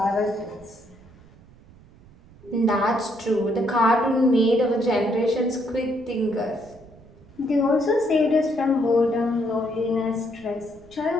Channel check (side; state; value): right; noise; rumble, 24 dB below the sound